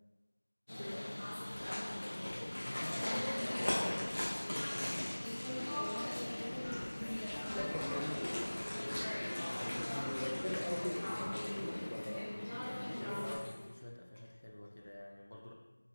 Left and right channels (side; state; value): both; inverted; correlation -1.00